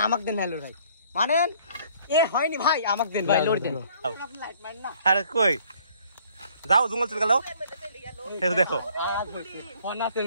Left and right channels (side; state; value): both; inverted; correlation -0.60